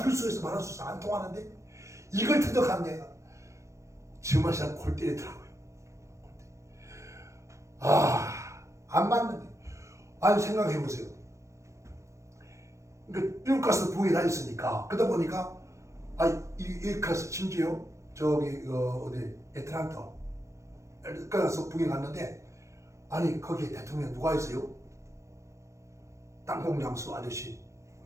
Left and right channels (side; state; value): left; late; 0.15 ms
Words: 수 있어 말할 수 있어 안 통하는데 이걸 터득한 데가 정말 사람 골 때리더라고요. 안 맞는데. 아니 생각해보세요. 그러니까 미국 가서 부에 다녔으니까 그러다 보니까 이 가서 심지어 저기 어디 애틀랜타 가서 북에 갔는데 아니 거기에 대통령 누가 있어요? 땅콩장수 아저씨